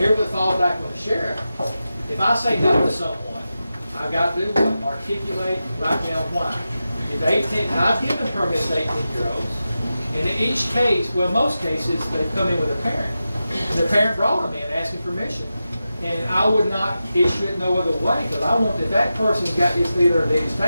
the thought back with the sheriff. If I say no to someone, I've got to do what? Articulate, write down why. If 18, now I've given permits to 18-year-olds. And in each case, well, most cases, they come in with a parent. And the parent brought them in asking permission. And I would not issue it no other way, because I want that that person's got his leader at Daddy's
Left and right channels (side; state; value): both; inverted; correlation -0.92